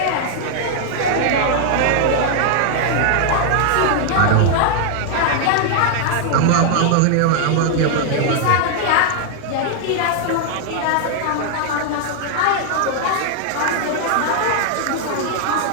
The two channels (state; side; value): different; both; correlation 0.00